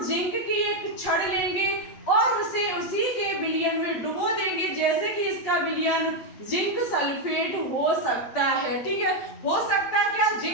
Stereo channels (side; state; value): right; late; 8.6 ms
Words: जिंक की एक छड़ लेंगे और उसे उसी के विलयन में डुबो देंगे। जैसे कि इसका विलयन जिंक सल्फेट हो सकता है, ठीक है, हो सकता है क्या,